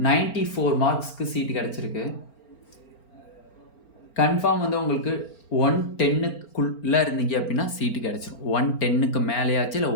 94 மார்க்ஸ்க்கு சீட்டு கிடச்சிருக்கு. கன்ஃபார்ம் வந்து உங்களுக்கு 110க்குள்ளே இருந்தீங்க அப்படின்னா சீட்டு கிடச்சிரும். 110க்கு மேலேயாச்சு இல்லை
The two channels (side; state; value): right; late; 4.4 ms